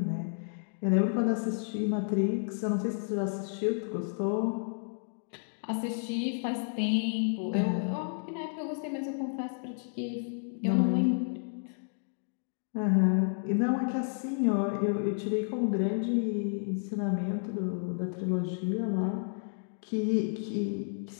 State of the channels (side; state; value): right; silent; digital silence